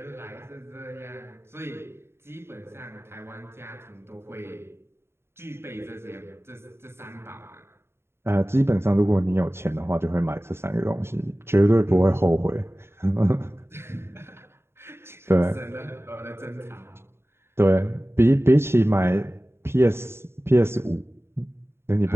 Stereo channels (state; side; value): late; left; 0.12 ms